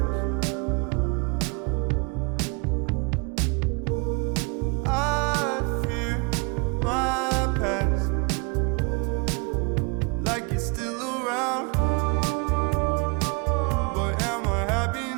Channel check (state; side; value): quieter; left; 31.4 dB